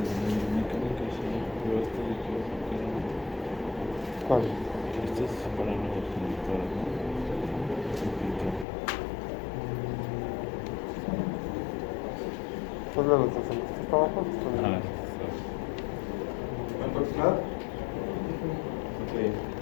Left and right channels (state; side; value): drops out; right; at 8.7 s